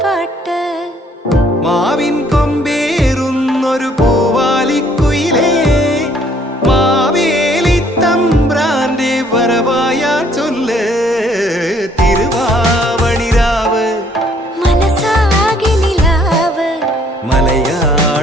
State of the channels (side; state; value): both; normal; correlation 0.63